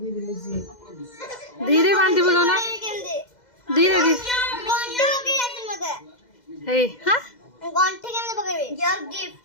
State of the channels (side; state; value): right; late; 2.0 ms